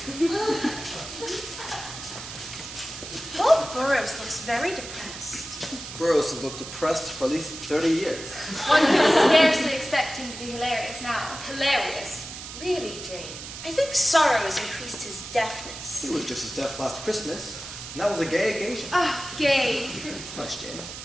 Poor Burroughs looks very depressed. Burroughs has looked depressed for at least 30 years. One could scarcely expect him to be hilarious now. Hilarious. Really, Jane? I think sorrow has increased his deafness. He was just as deaf last Christmas, and that was a gay occasion. Ah, gay. Hush, Jane.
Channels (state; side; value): noise; right; hiss, 11 dB below the sound